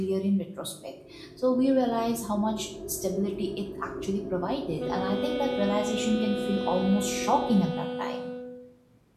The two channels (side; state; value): both; identical; correlation 1.00